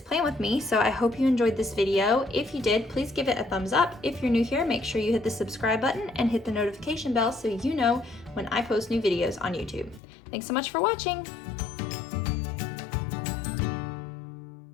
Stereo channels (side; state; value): right; drops out; at 10.0 s